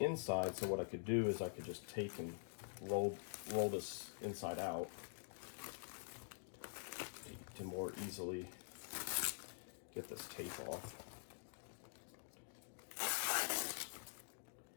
so what I could do is I could just take and roll this inside out to more easily get this tape off.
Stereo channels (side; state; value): right; silent; digital silence